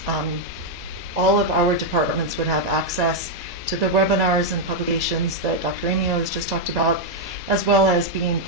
all of our departments would have access to the webinars and publications that Dr. Amio has just talked about, as well as being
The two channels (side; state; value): both; normal; correlation -0.01